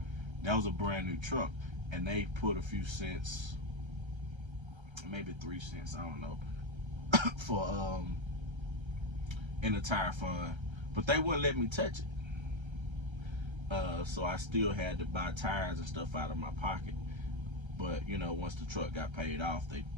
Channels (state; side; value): late; left; 1.3 ms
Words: that was a brand new truck, and they put a few cents, maybe 3 cents, I don't know, for in the tire fund, but they wouldn't let me touch it. So I still had to buy tires and stuff out of my pocket. But once the truck got paid off, they